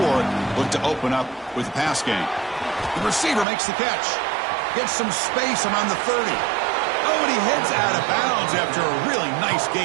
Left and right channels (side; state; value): left; drops out; at 3.5 s